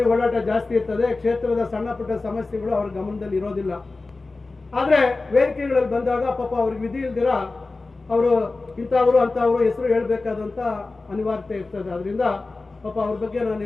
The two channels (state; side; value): quieter; right; 3.5 dB